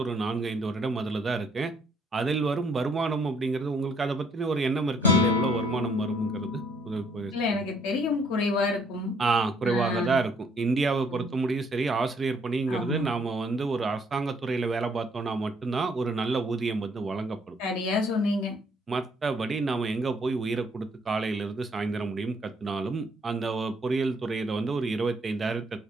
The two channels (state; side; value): normal; both; correlation 0.66